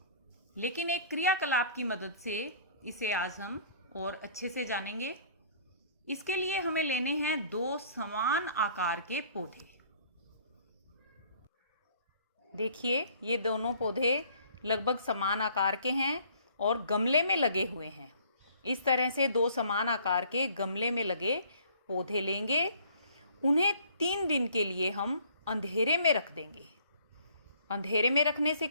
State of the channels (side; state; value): both; inverted; correlation -0.56